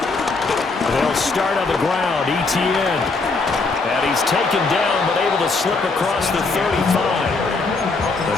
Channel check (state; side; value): quieter; right; 3.9 dB